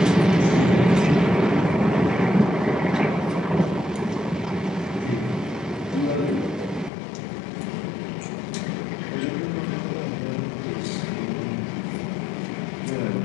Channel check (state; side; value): drops out; right; at 6.9 s